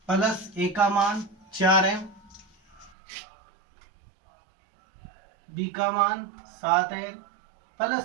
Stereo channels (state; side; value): drops out; left; at 2.9 s